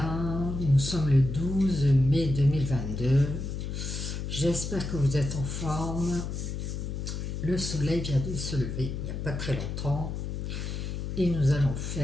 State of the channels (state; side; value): noise; left; hum, 4 dB below the sound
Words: Nous sommes le 12 mai 2022. J'espère que vous êtes en forme. Le soleil vient de se lever il n'y a pas très longtemps. Et nous allons